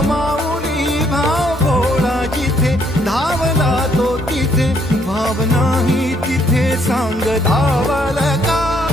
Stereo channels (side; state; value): both; normal; correlation 0.69